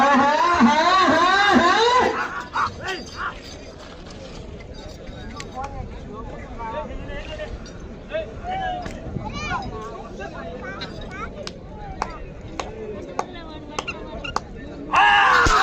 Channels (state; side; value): identical; both; correlation 1.00